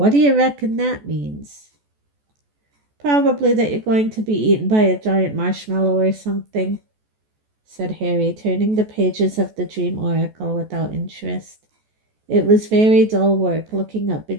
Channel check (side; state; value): left; late; 14 ms